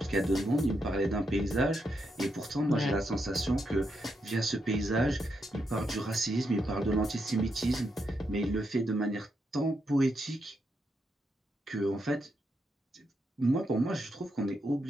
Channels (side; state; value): both; normal; correlation 0.82